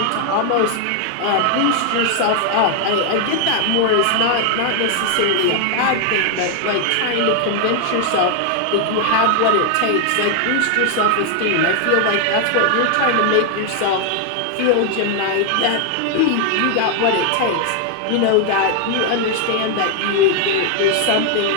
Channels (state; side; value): different; both; correlation 0.00